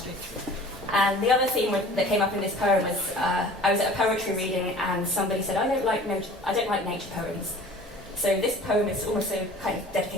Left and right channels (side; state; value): both; normal; correlation 0.45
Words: And the other theme that came up in this poem was I was at a poetry reading and somebody said, I don't like nature poems. So this poem is also kind of